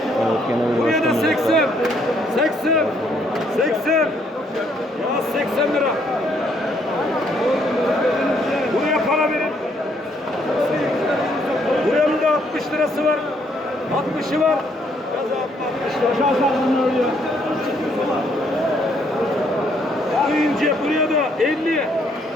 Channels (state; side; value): normal; both; correlation 0.69